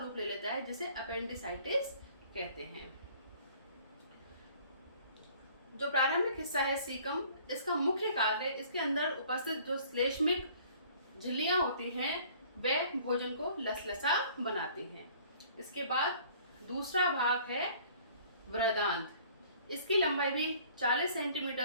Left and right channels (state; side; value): inverted; both; correlation -0.53